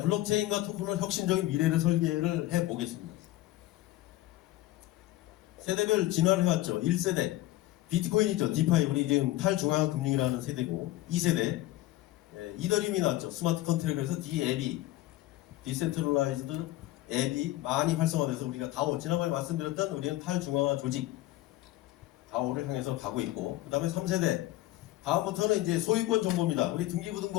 블록체인과 토큰은 혁신적인 미래를 설계를 해보겠습니다. 세대별 진화를 해왔죠. 1세대 비트코인 있죠. 디파이, 우리 지금 탈중앙화 금융이라는 세대고, 2세대 이더리움이 나왔죠. 스마트 컨트랙트에서 DAB, 디센트럴라이즈드 앱이 많이 활성화돼서 우리가 다오, 지난번에 말씀드렸던 우리는 탈중앙화 조직 다오를 향해서 가고 있고, 그 다음에 3세대 다음부터는 이제 소유권 정보입니다. 우리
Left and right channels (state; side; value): quieter; right; 16.3 dB